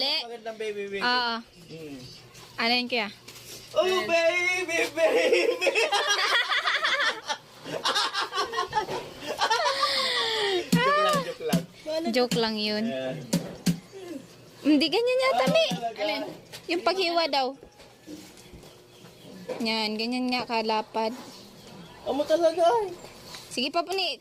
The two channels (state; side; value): identical; both; correlation 1.00